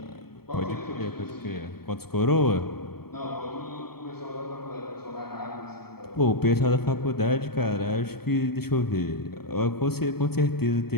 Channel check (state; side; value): late; right; 0.95 ms